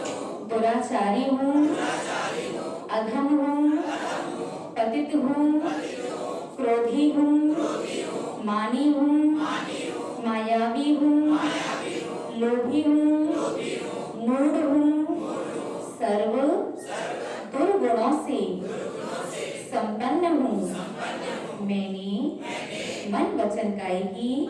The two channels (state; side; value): identical; both; correlation 1.00